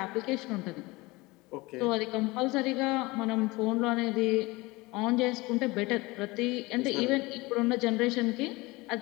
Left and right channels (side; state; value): right; quieter; 22.5 dB